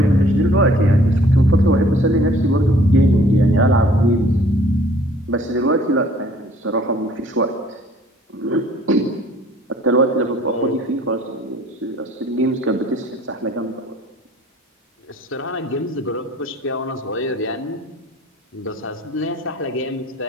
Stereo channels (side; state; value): both; normal; correlation 0.56